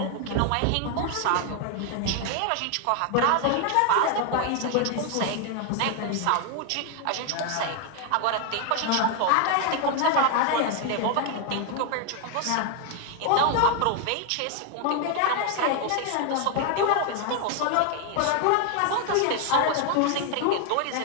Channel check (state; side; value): different; both; correlation 0.01